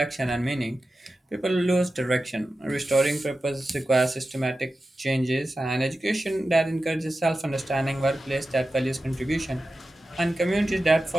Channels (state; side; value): normal; both; correlation 0.93